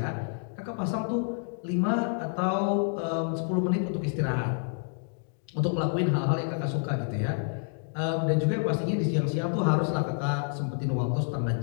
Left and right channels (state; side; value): silent; right; 59 dB below the other